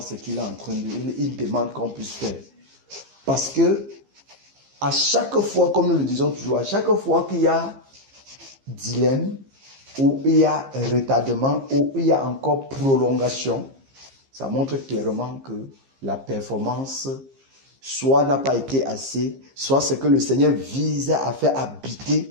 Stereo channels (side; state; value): left; late; 15 ms